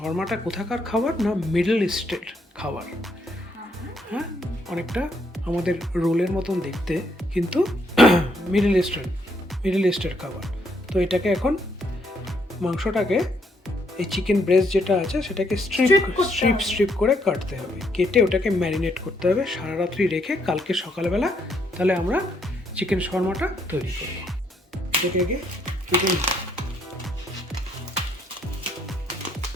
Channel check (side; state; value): both; normal; correlation 0.73